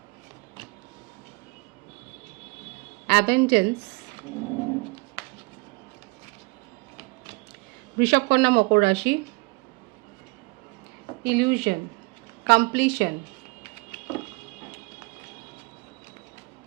অ্যাবেন্ডেন্স, বৃষভ কন্যা মকর রাশি, ইলিউশন, কমপ্লিশন,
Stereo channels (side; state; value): left; quieter; 28.1 dB